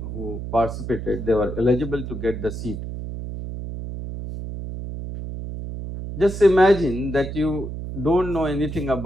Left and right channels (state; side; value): noise; right; hum, 7 dB below the sound